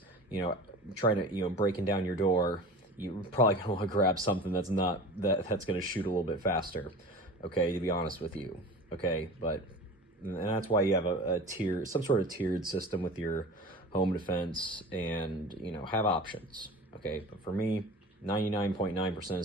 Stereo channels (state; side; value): normal; both; correlation 0.36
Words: trying to, breaking down your door. You're probably gonna want to grab something that's gonna shoot a little bit faster. Okay, to be honest with you. Okay, and that's why you have some sort of tiered system with your home defense, and have options. Okay, but for me, 99.9% of